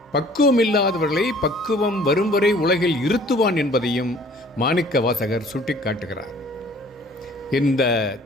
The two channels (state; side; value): normal; both; correlation 0.53